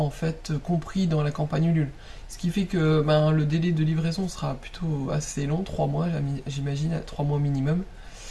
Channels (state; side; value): identical; both; correlation 1.00